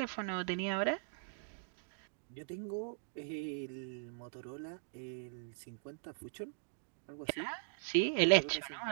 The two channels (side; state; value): left; silent; digital silence